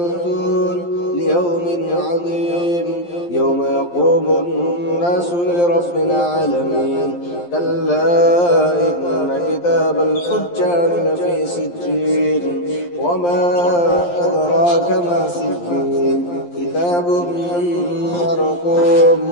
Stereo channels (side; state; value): right; late; 11 ms